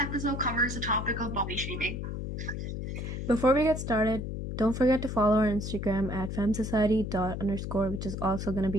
covers the topic of body shaming. Before we get started, don't forget to follow our Instagram at femsociety._, which is also going to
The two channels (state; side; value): noise; left; hum, 5 dB below the sound